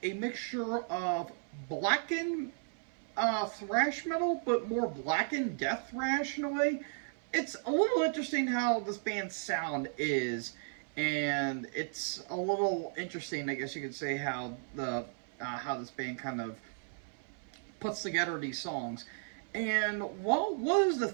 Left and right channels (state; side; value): silent; left; 55 dB below the other